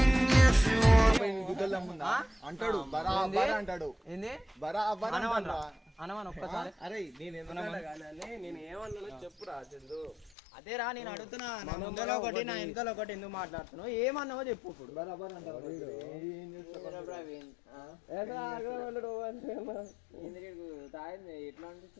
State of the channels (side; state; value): right; drops out; at 10.3 s